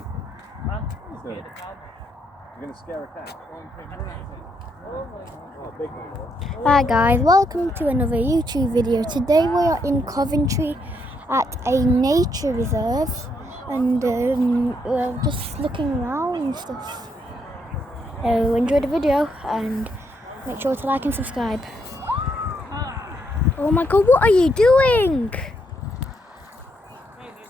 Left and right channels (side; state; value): both; normal; correlation 0.76